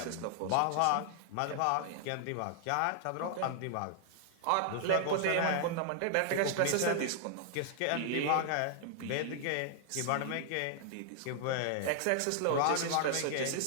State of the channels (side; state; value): both; different; correlation 0.00